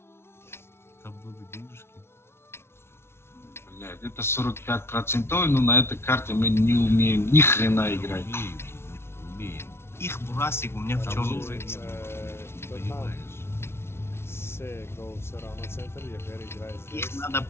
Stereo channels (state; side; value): late; right; 0.12 ms